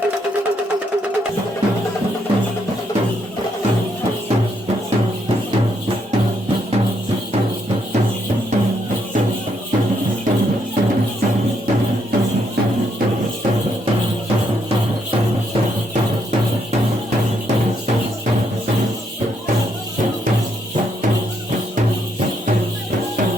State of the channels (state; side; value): normal; both; correlation 0.75